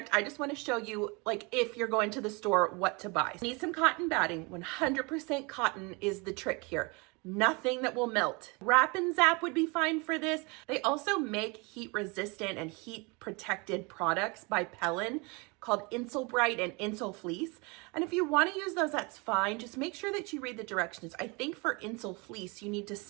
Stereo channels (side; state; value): left; quieter; 28.6 dB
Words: I just want to show you, like, if you're going to the store, what to buy. Need some cotton batting. 100% cotton is the trick here. Nothing that will melt. Wrap and Zap would be fine for this. They also make heat resistant and heat protected products by Pellin called Insul Bright and Insul Fleece. And if you want to use those, that's fine. Just make sure that you read the directions. I think for Insul Fleece, you need to